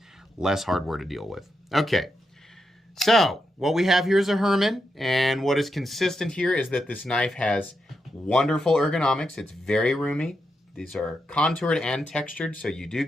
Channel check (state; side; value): normal; both; correlation 0.85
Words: less hardware to deal with. Okay. So what we have here is a Herman, and what is consistent here is that this knife has wonderful ergonomics. It's very roomy. These are contoured and textured, so you do